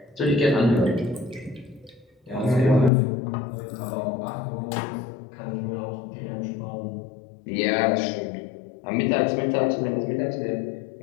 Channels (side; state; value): right; drops out; at 2.9 s